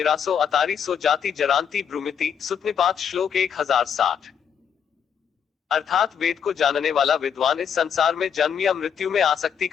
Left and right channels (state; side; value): quieter; right; 7.7 dB